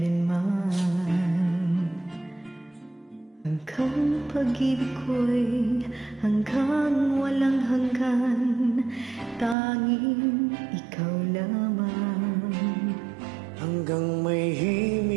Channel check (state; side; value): drops out; left; at 9.6 s